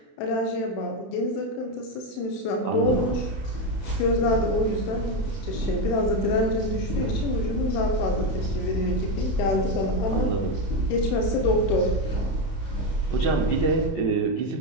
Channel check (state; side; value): late; right; 31 ms